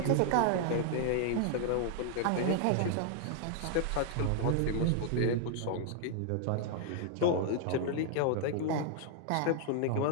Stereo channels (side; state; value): both; different; correlation 0.00